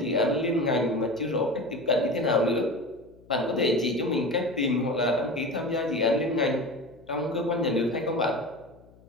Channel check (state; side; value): noise; left; hum, 26 dB below the sound